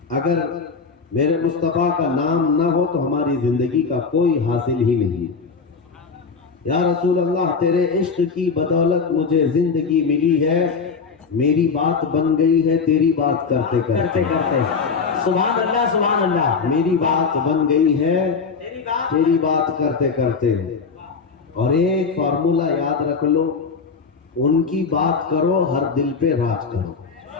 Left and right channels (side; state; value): right; quieter; 5.1 dB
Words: अगर मेरे मुस्तफ़ा का नाम ना हो तो हमारी जिंदगी का कोई हासिल ही नहीं। या रसूल अल्लाह तेरे इश्क की बदौलत मुझे जिंदगी मिली है, मेरी बात बन गई है तेरी बात करते करते करते। सुभान अल्लाह, सुभान अल्लाह। मेरी बात बन गई है तेरी बात करते करते। और एक फार्मूला याद रख लो, उनकी बात करो हर दिल पे राज करो।